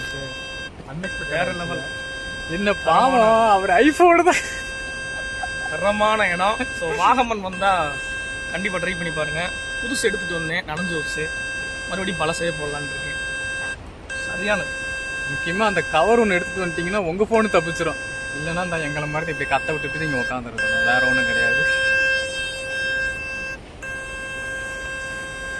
அன்எக்ஸ்பெக்டட் வேற லெவல். என்ன பாவம், அவர் ஐஃபோனு தான். தரமான இடம். ஸோ வாகமன் வந்தால் கண்டிப்பாக ட்ரை பண்ணி பாருங்கள். புதுசு எடுத்துகிட்டு வந்தேன், நனைஞ்சு வச்சு மறுபடியும் பழசே போடலான்னு இருக்கேன். சரியானது. முக்கியமாக அந்த கவர் ஒன்று எடுத்துகிட்டு வந்துட்டிங்கன்னா உங்கள் ஃபோனு தப்பிச்சிடும். இல்லைன்னா இந்த எங்களை மாதிரி இப்படி கத்த விட்டுட்டு நீங்கள் உட்காந்துருக்கணும். வேறு ஒன்றும் கிடையாது.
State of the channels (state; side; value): identical; both; correlation 1.00